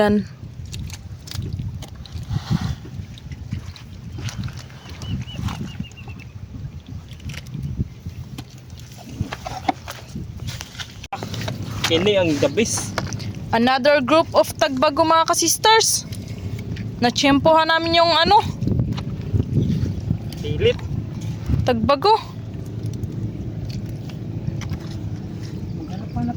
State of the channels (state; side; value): identical; both; correlation 1.00